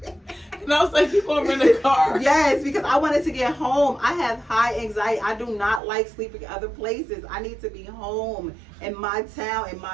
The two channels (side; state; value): left; drops out; at 5.8 s